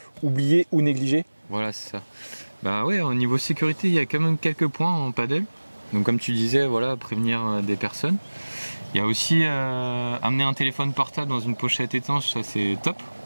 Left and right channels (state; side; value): inverted; both; correlation -1.00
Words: oublier ou négliger? Voilà, c'est ça. Bah ouais, au niveau sécurité, il y a quand même quelques points en paddle. Donc comme tu disais, voilà, prévenir des personnes. Il y a aussi amener un téléphone portable dans une pochette étanche, ça c'est top,